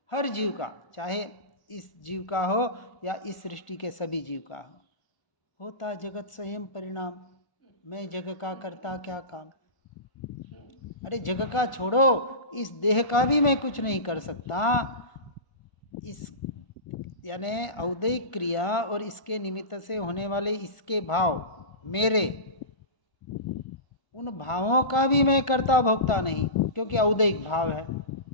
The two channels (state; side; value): late; right; 1.5 ms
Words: हर जीव का, चाहे इस जीव का हो या इस सृष्टि के सभी जीव का हो, होता जगत स्वयं परिणाम, मैं जग का करता क्या काम। अरे जग का छोड़ो, इस देह का भी मैं कुछ नहीं कर सकता। इस यानी औदैहिक क्रिया और इसके निमित्त से होने वाले इसके भाव, मेरे उन भावों का भी मैं करता भोगता नहीं, क्योंकि औदैहिक भाव है,